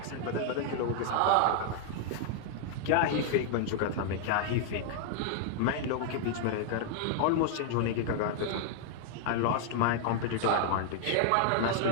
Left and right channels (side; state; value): both; different; correlation 0.00